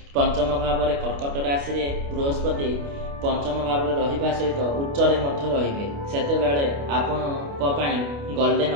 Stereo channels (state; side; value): late; left; 29 ms